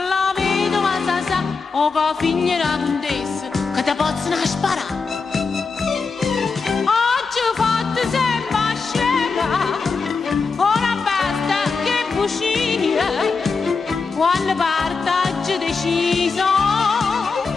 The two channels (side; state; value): right; quieter; 4.7 dB